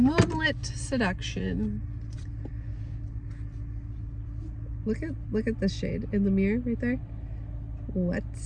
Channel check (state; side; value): identical; both; correlation 1.00